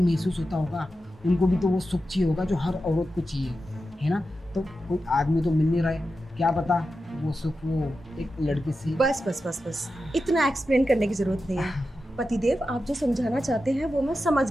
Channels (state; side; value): normal; both; correlation 0.91